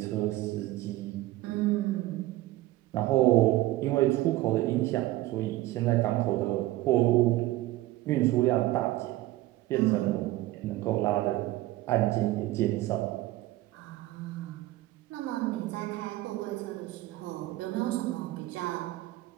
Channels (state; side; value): quieter; left; 16.8 dB